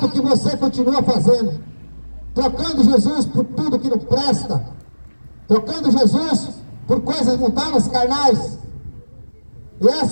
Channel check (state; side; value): inverted; both; correlation -1.00